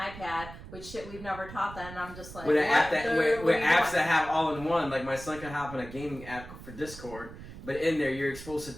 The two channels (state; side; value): noise; right; rumble, 14 dB below the sound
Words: which shit we've never taught them. And I'm just like, with apps that have all in one. Like, my son can hop on a gaming app for Discord. But in there, you're exposed to